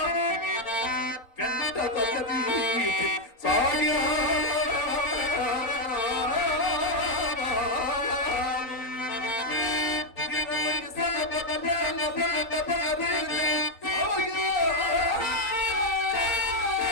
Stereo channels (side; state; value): right; late; 3.9 ms